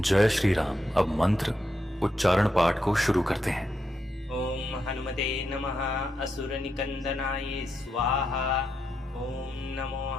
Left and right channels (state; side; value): normal; both; correlation 0.83